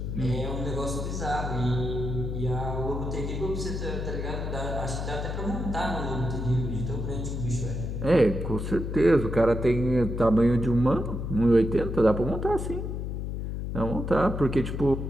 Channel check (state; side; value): noise; left; hum, 4 dB below the sound